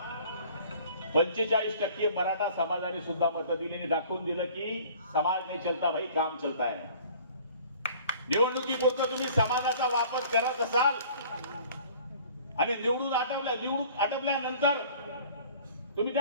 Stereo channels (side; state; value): both; inverted; correlation -0.50